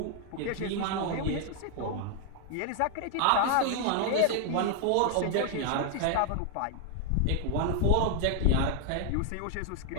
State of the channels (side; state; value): both; different; correlation 0.00